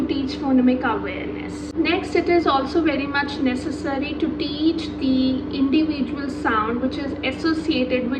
teach phonemic awareness. Next, it is also very much necessary to teach the individual sound which is associated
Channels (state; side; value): identical; both; correlation 1.00